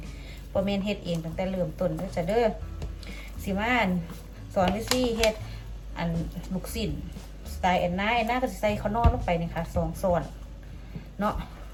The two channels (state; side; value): identical; both; correlation 1.00